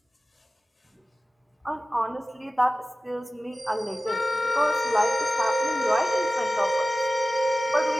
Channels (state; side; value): normal; both; correlation 0.97